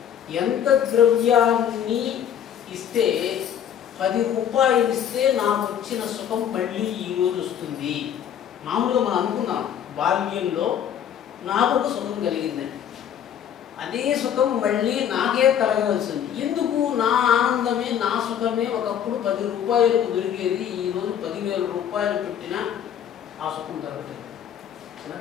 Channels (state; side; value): quieter; right; 9.3 dB